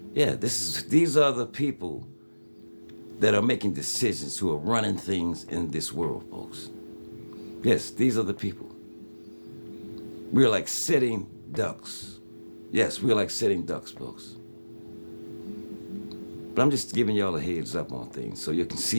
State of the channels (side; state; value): both; inverted; correlation -1.00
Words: Yeah, these are the people that are making decisions, who are running things in this world, folks. Yes, these are the people. We're like sitting ducks. Yes, we're like sitting ducks, folks. But I'm just giving y'all a heads up on things so you can